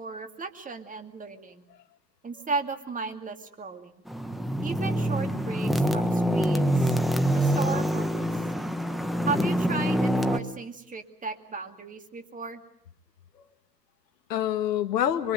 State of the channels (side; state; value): both; normal; correlation 0.68